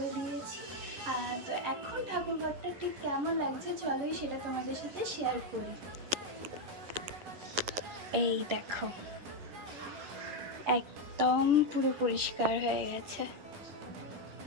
দিয়েছি। তো এখন ঠাকুর ঘরটা ঠিক কেমন লাগছে চলোই সেটা তোমাদের সাথে শেয়ার করি। এই দেখো, একদম পুরো পরিষ্কার হয়ে গেছে।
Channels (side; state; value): left; late; 10 ms